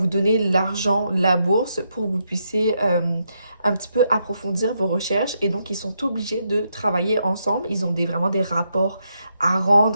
donner l'argent, la bourse pour que vous puissiez un petit peu approfondir vos recherches et donc ils sont obligés de travailler ensemble. Ils ont vraiment des rapports à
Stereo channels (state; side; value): inverted; both; correlation -0.80